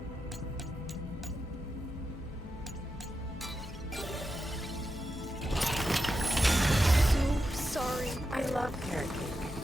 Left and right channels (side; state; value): both; normal; correlation 0.88